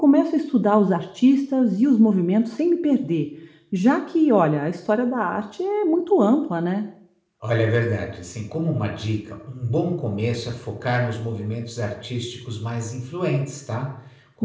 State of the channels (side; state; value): both; identical; correlation 1.00